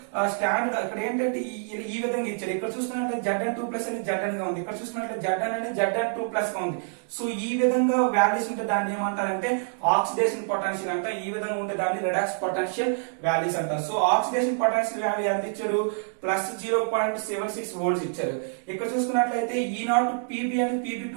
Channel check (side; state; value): left; silent; digital silence